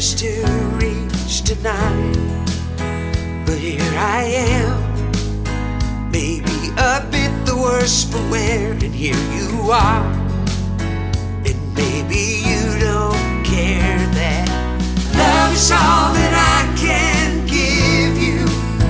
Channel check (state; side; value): identical; both; correlation 1.00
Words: to reach tonight, but here I am, maybe a bit the worse for wear, and here you are, and maybe you don't care that love is all that I can give you.